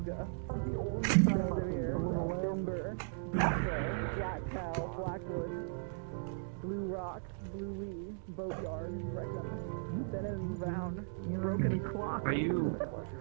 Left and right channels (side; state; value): left; silent; digital silence